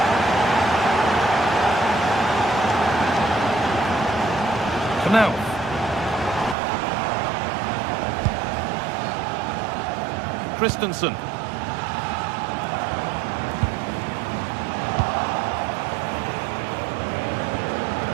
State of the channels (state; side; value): drops out; left; at 6.6 s